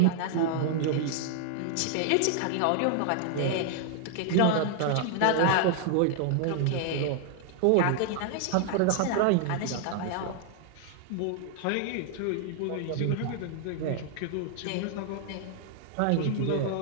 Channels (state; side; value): different; both; correlation 0.00